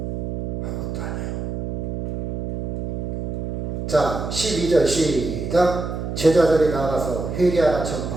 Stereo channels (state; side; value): noise; right; hum, 4 dB below the sound